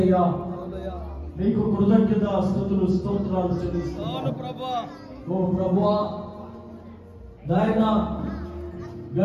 నీకు కృతజ్ఞత స్తుతులు స్తోత్రాలు చెల్లిస్తున్నాను. ఓ ప్రభువా, నాయన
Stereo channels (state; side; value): identical; both; correlation 1.00